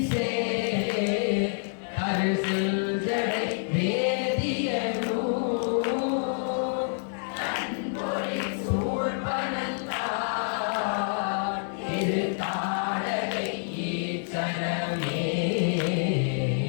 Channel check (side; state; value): right; silent; digital silence